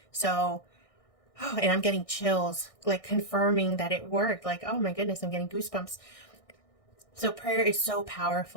So, oh, and I'm getting chills, like confirming that it worked. Like, oh my goodness, I'm getting goosebumps. So prayer is so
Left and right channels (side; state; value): right; late; 1.6 ms